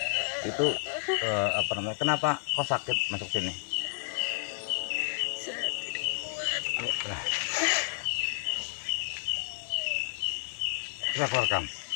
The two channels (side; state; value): right; silent; digital silence